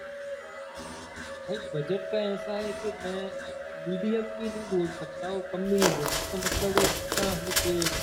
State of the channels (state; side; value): identical; both; correlation 1.00